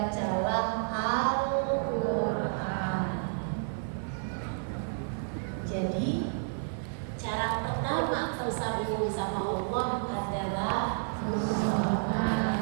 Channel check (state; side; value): silent; left; digital silence